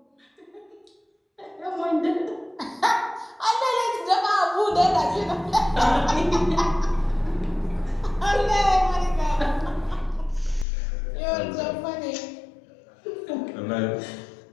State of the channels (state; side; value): drops out; right; at 10.7 s